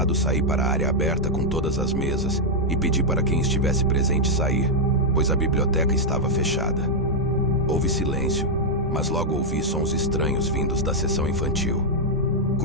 saí para a área aberta com todas as mesas e pedi para quem estivesse presente sair, pois a biblioteca estava fechada. Houve silêncio, mas logo ouvi sons estranhos vindos da seção infantil.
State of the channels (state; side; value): normal; both; correlation -0.03